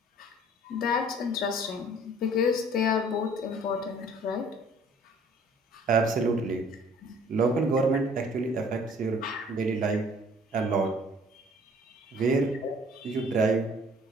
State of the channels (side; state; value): both; normal; correlation 0.54